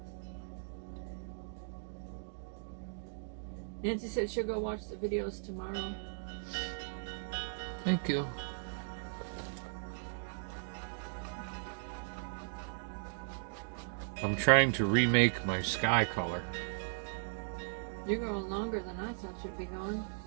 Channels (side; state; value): left; silent; digital silence